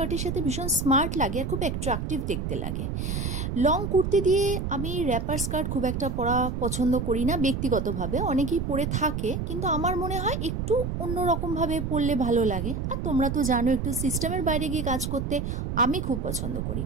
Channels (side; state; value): right; noise; rumble, 3 dB below the sound